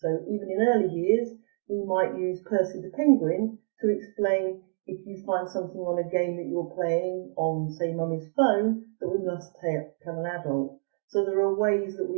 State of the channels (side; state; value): left; silent; digital silence